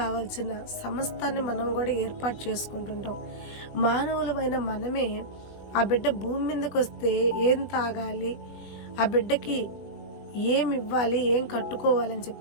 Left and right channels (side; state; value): right; late; 20 ms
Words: సమస్తాన్ని మనం కూడా ఏర్పాటు చేసుకుంటుంటాం. మానవులమైన మనమే ఆ బిడ్డ భూమి మీదకి వస్తే ఏం తాగాలి, ఆ బిడ్డకి ఏమి ఇవ్వాలి, ఏం కట్టుకోవాలని